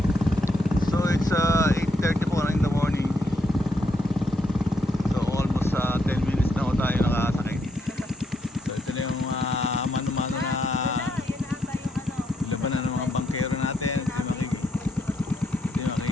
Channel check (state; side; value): normal; both; correlation 0.77